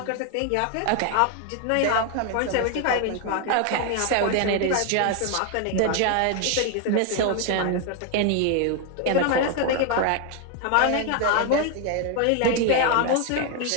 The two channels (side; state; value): both; different; correlation 0.01